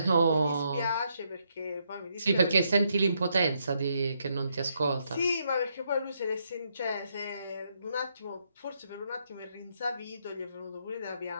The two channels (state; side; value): inverted; both; correlation -0.76